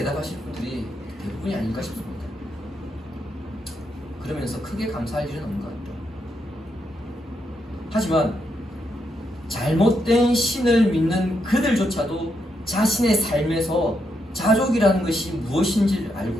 분들이 대부분이 아닐까 싶습니다. 그러면서 크게 감사할 일은 없는 것 같아요. 하지만 잘못된 신을 믿는 그들조차도 자신의 삶에서 자족이라는 것이 무엇인지를 알고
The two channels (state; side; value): normal; both; correlation 0.80